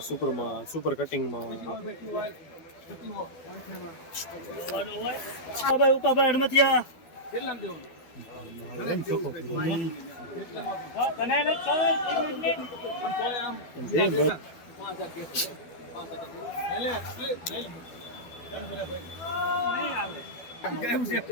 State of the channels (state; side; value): late; right; 12 ms